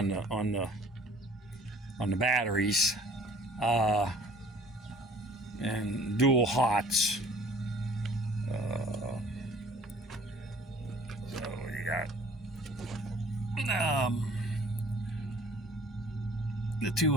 the batteries, and dual hots. So you got the two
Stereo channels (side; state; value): both; normal; correlation 0.53